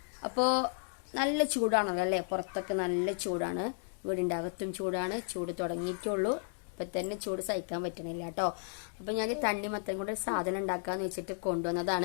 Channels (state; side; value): silent; right; 55 dB below the other